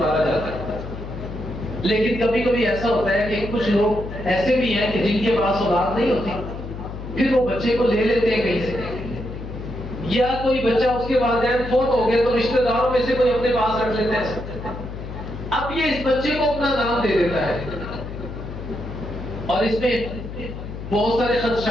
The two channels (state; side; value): noise; left; hum, 9 dB below the sound